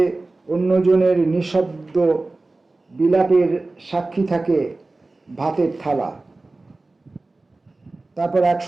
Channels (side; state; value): left; quieter; 3.2 dB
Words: অন্যজনের নিঃশব্দ বিলাপের সাক্ষী থাকে ভাতের থালা। তারপর এক